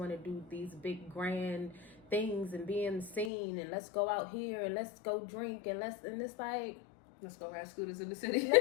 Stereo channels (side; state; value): right; drops out; at 3.3 s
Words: to do these big grand things and be in the scene, and let's go out here and let's go drink and it's like, let's go ride scooters in the city.